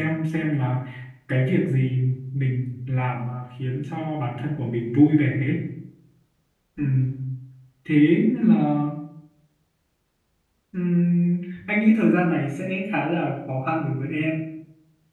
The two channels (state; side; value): identical; both; correlation 1.00